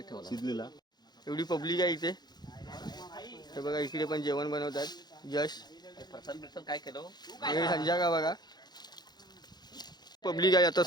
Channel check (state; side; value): late; right; 0.20 ms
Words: शिजलेला. एवढी पब्लिक आहे इथे. हे बघा इकडे पण जेवण बनवतात. यश काय केलं हे संजय का बघा पब्लिक आहे आता